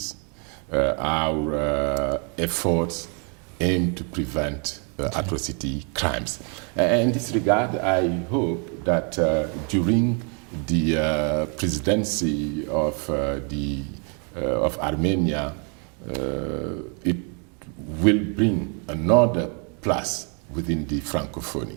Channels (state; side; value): quieter; left; 38.5 dB